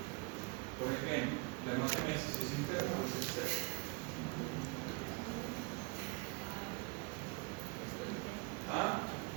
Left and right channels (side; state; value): left; quieter; 27.8 dB